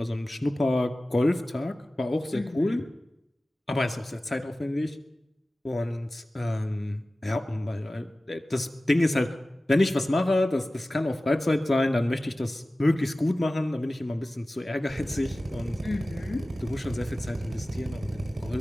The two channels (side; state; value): both; normal; correlation 0.97